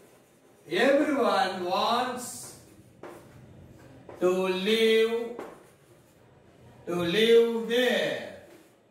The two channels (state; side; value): identical; both; correlation 1.00